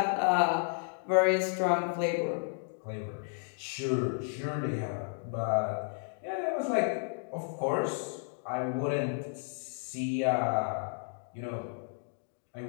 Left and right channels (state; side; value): silent; right; digital silence